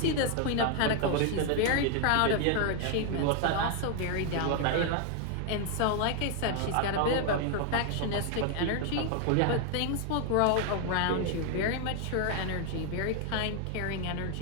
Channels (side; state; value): both; different; correlation 0.00